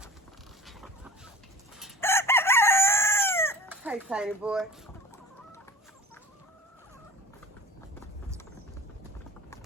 Hey, tiny boy.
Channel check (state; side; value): normal; both; correlation 0.39